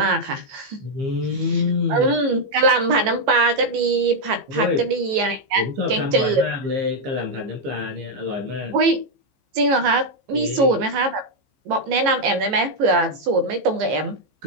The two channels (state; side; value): late; left; 15 ms